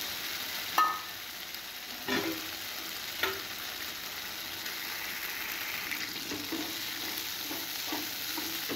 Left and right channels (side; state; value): left; noise; hum, 29 dB below the sound